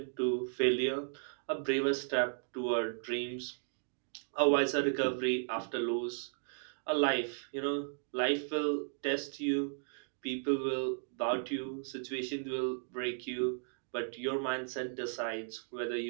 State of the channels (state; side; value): silent; left; digital silence